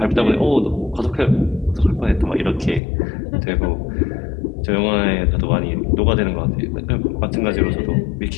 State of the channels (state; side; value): drops out; right; at 2.8 s